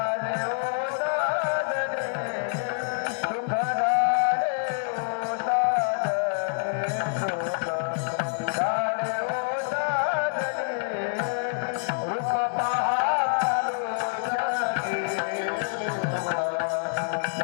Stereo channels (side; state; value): right; silent; digital silence